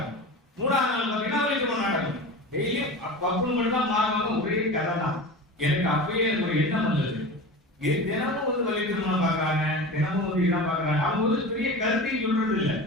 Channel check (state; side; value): normal; both; correlation 0.31